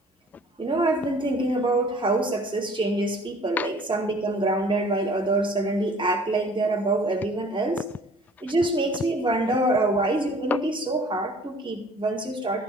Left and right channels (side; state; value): both; normal; correlation 0.52